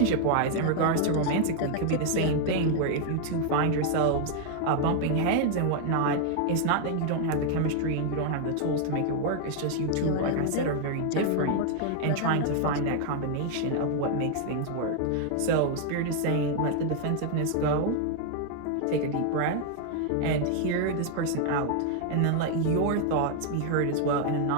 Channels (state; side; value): different; both; correlation 0.00